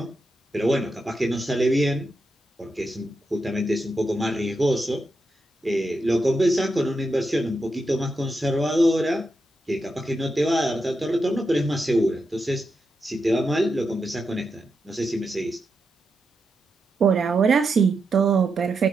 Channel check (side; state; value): both; normal; correlation 0.86